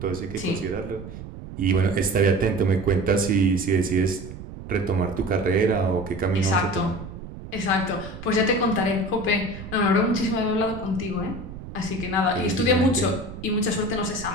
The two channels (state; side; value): noise; right; rumble, 12 dB below the sound